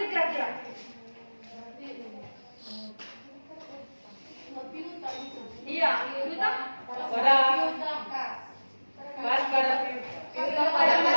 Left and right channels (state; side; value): inverted; both; correlation -1.00